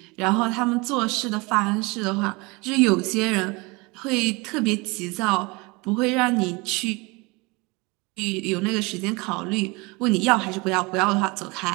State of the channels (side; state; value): left; quieter; 26.3 dB